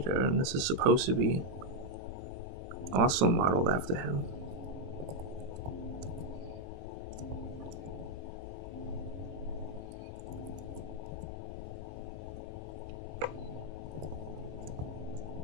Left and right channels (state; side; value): late; left; 22 ms